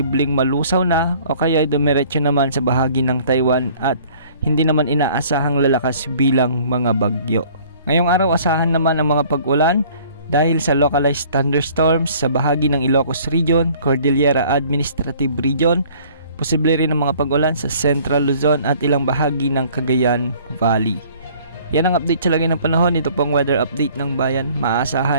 malusaw na o kaya dumiretso naman sa bahagi ng Taiwan at hindi naman inaasahang lalakas bilang mga bagyo. Ngayong araw asahan naman ang mga pag-ulan dahil sa localized thunderstorms sa bahagi ng Ilocos Region, Cordillera Administrative Region, posible rin ang mga pag-ulan sa Central Luzon at ilang bahagi ng Cagayan Valley. Yan ang update sa lagay ng panahon. Ito pong weather update ng bayan,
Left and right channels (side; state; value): both; inverted; correlation -0.54